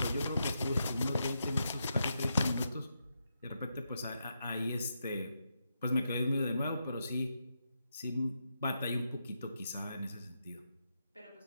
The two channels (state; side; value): inverted; both; correlation -0.84